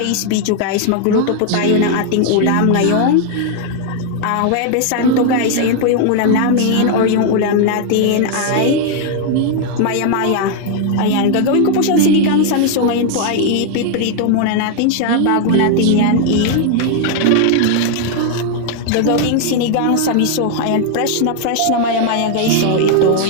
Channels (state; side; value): different; both; correlation 0.00